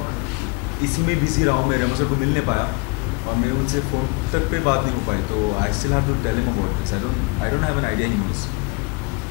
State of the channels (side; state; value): right; quieter; 29.1 dB